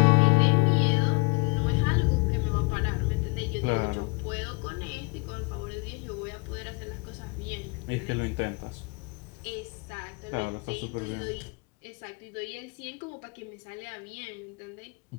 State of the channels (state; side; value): quieter; right; 30.5 dB